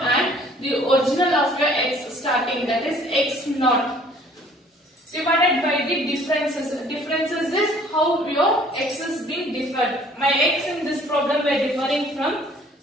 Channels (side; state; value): both; normal; correlation 0.56